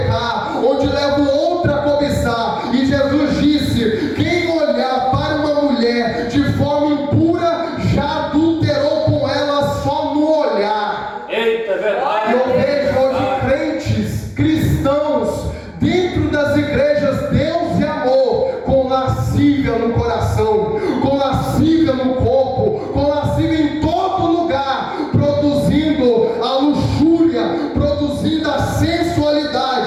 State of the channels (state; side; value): identical; both; correlation 1.00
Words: onde leva o outro a cobiçar. E Jesus disse: quem olhar para uma mulher de forma impura já adulterou com ela só no olhar. Eita, é verdade. Eu vejo hoje crentes, cristãos, dentro das igrejas, Deus e amor, com lascívia no coração, com lascívia no corpo, com lascívia em todo lugar, produzindo a luxúria, produzindo a